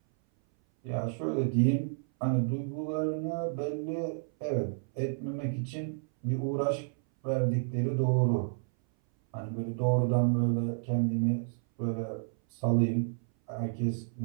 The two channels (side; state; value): left; silent; 57 dB below the other